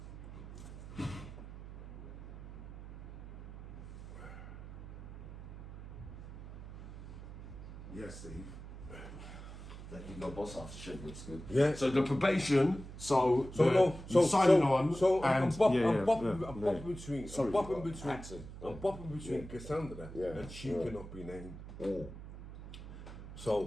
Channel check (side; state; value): right; noise; hum, 12 dB below the sound